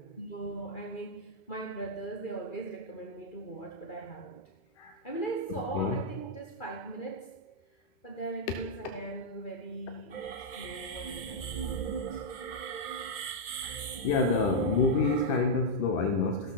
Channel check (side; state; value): right; late; 2.1 ms